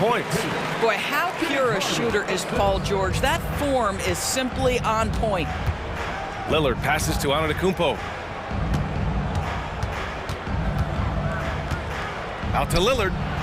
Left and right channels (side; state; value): both; identical; correlation 1.00